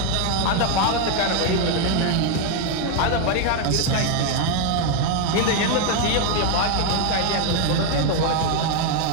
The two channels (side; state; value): both; different; correlation 0.01